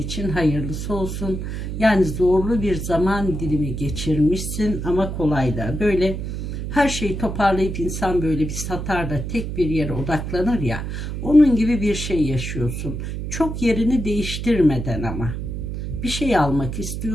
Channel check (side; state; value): right; noise; hum, 5 dB below the sound